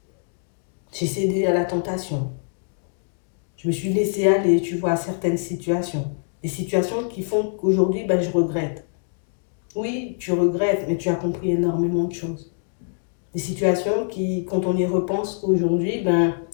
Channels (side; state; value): right; silent; digital silence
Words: J'ai cédé à la tentation. Je me suis laissée aller, tu vois, à certaines situations. Des situations qui font qu'aujourd'hui, ben, je regrette. Oui, tu regrettes, mais tu as compris énormément de choses. Des situations qui, quand on y repense aujourd'hui, ben,